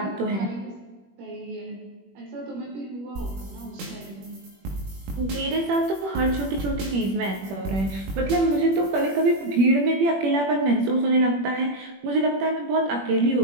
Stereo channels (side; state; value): left; late; 21 ms